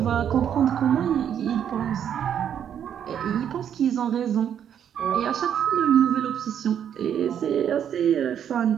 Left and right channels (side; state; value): left; quieter; 9.0 dB